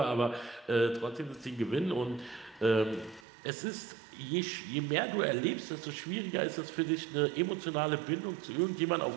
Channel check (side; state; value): left; drops out; at 3.2 s